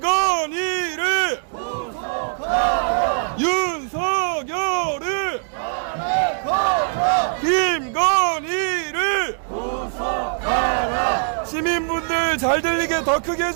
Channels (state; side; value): silent; left; digital silence